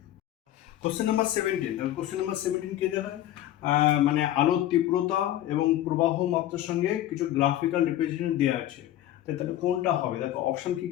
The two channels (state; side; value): quieter; right; 13.2 dB